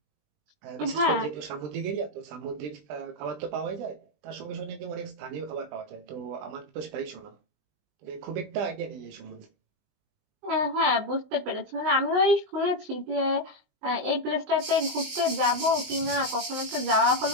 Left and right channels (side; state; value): left; late; 20 ms